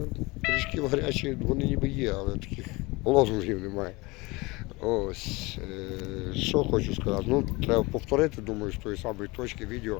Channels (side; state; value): right; quieter; 23.7 dB